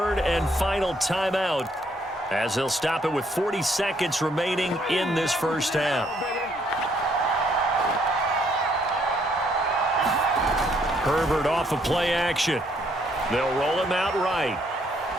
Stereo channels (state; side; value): normal; both; correlation 0.69